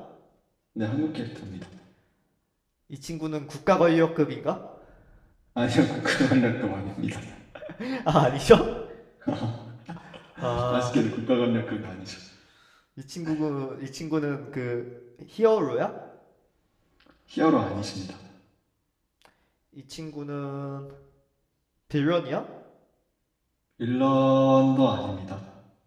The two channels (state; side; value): identical; both; correlation 1.00